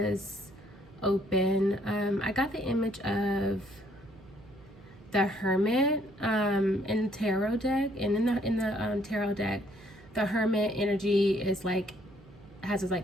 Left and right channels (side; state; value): right; noise; hum, 23 dB below the sound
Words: open. I got the image of the Hermit in the tarot deck, and in the tarot deck, the Hermit energy is like has his